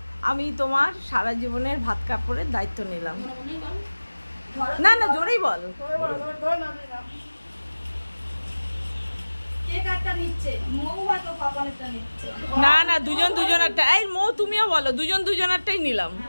আমি তোমার সারা জীবনের ভাত কাপড়ের দায়িত্ব নিলাম। না না জোরেই বল। না না দুজন দুজনেরটা, এই মৌ তুমিও বলো, দুজন দুজনেরটাই নিলাম।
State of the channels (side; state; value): both; inverted; correlation -1.00